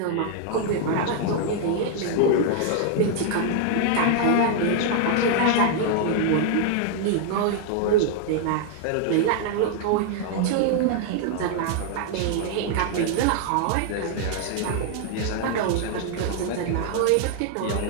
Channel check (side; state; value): both; different; correlation 0.00